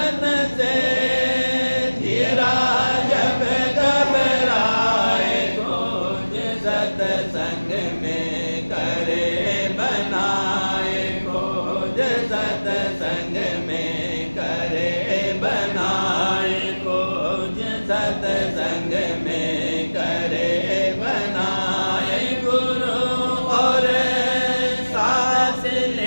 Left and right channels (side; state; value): both; inverted; correlation -1.00